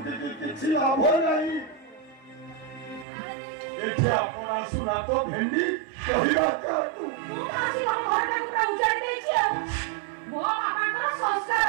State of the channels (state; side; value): drops out; left; at 3.1 s